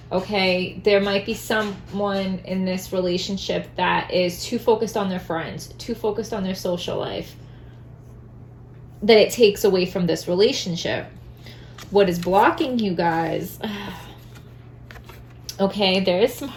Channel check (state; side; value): identical; both; correlation 1.00